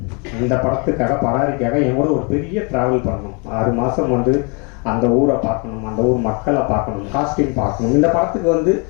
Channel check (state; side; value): quieter; right; 33.7 dB